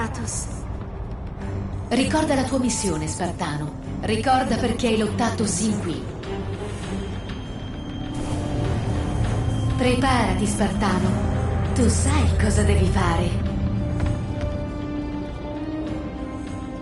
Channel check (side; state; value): both; identical; correlation 1.00